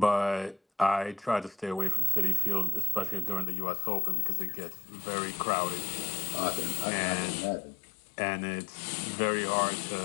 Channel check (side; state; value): right; drops out; at 3.5 s